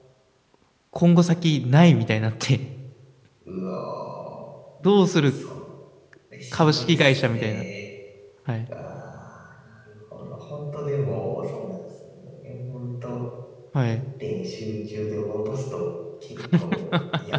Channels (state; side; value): identical; both; correlation 1.00